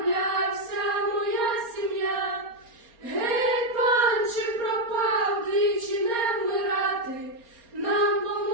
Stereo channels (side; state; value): left; late; 4.3 ms